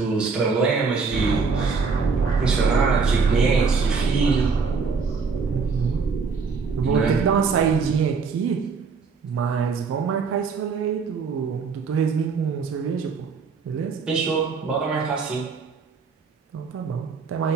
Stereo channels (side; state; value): left; quieter; 5.1 dB